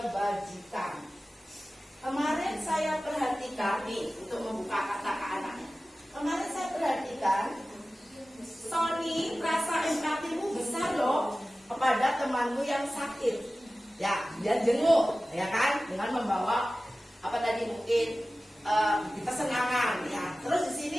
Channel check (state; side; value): normal; both; correlation 0.96